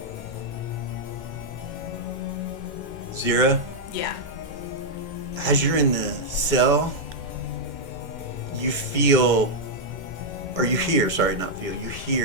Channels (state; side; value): late; left; 2.1 ms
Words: Zira, Yeah. as you're in the cell, you feel, or you hear, sorry, not feel, you